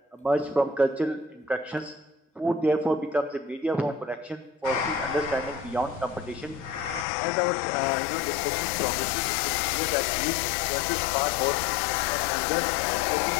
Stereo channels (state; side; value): drops out; right; at 7.1 s